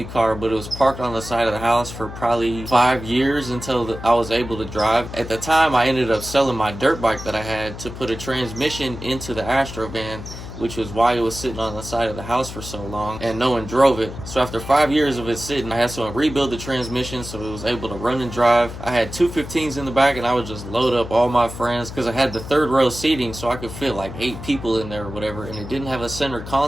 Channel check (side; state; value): left; noise; hum, 11 dB below the sound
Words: car, but it was parked on the side of the house for probably 5 years until I was able to drive. At the time, I ended up selling my dirt bike that I had to put a transmission into the Astro van, which was why it was sitting on the side of the house for so long and no one drove it. So after 5 years of it sitting, I had to rebuild the transmission so it was able to run and drive. I had two 15s in the back and I would just load up all my friends because I had the third row seating so I could fit like 8 people in there or whatever, and it didn't have a center